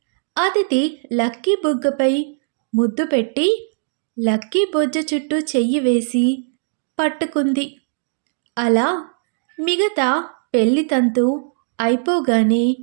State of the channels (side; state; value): left; silent; digital silence